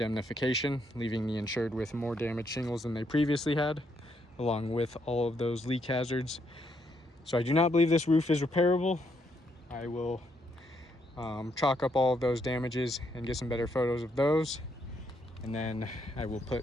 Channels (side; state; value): both; normal; correlation 0.75